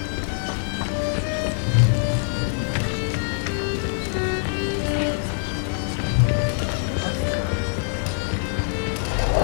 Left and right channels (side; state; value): right; silent; digital silence